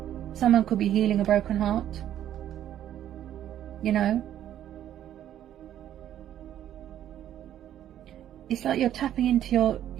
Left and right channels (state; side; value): quieter; left; 11.3 dB